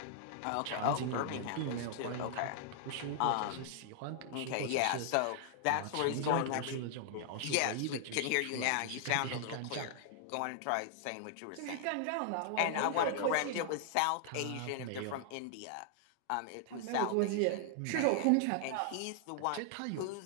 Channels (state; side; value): different; both; correlation -0.01